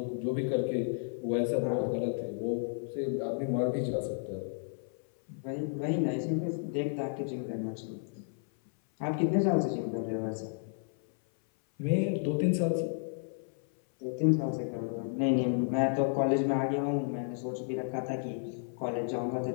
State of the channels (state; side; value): silent; right; 56 dB below the other